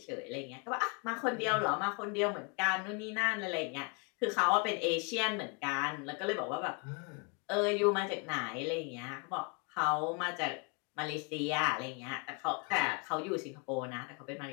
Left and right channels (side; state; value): right; quieter; 33.1 dB